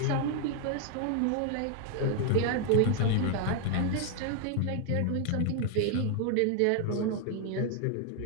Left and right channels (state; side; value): different; both; correlation 0.01